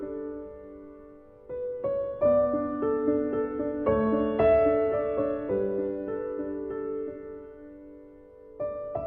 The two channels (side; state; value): both; identical; correlation 1.00